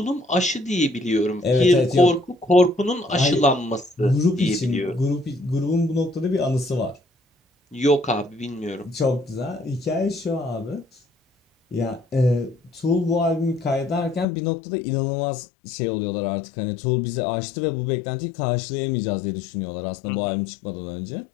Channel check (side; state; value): right; drops out; at 14.2 s